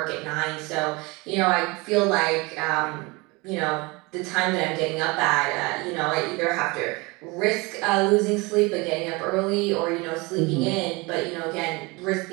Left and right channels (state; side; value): quieter; left; 25.4 dB